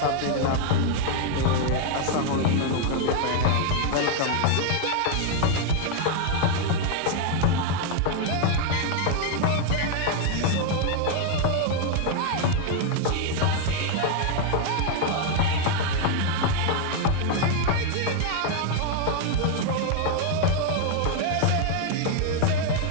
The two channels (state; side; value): different; both; correlation 0.00